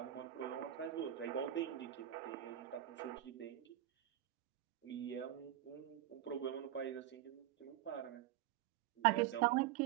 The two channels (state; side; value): quieter; left; 12.9 dB